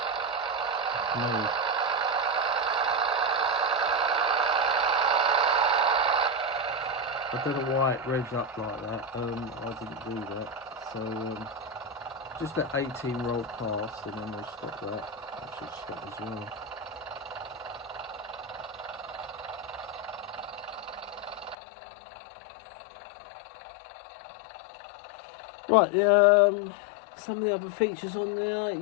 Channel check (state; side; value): drops out; right; at 21.6 s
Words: No. I don't know why it revs up like that. I didn't do that. So just let 18 roll past and then we'll stop that. I should stop as well. Right, some of the other features on there,